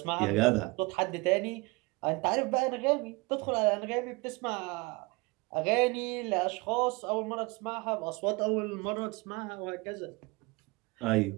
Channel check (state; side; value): quieter; left; 25.8 dB